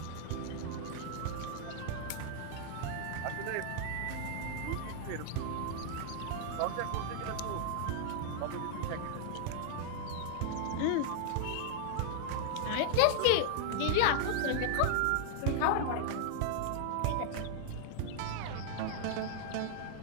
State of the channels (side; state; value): both; different; correlation -0.01